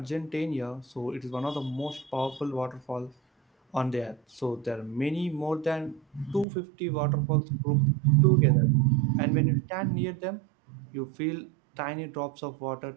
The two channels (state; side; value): drops out; left; at 6.5 s